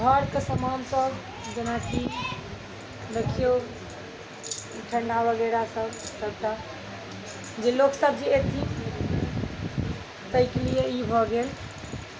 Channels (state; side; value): identical; both; correlation 1.00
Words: के सामान सब, जेना कि देखियो ठंडा वगैरह सब सबटा जे लोग सब जे एथिन ताहि के लिए ई भऽ गेल।